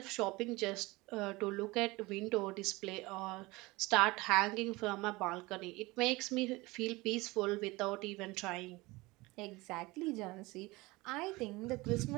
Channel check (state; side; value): quieter; left; 22.1 dB